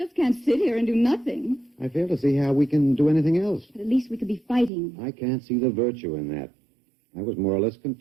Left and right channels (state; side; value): drops out; left; at 4.7 s